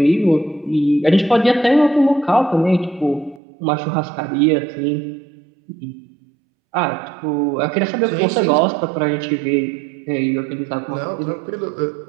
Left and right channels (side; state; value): left; drops out; at 3.4 s